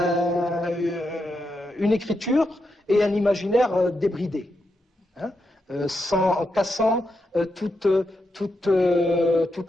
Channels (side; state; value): both; normal; correlation 0.84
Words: une écriture et un imaginaire débridé, hein, en cassant toutes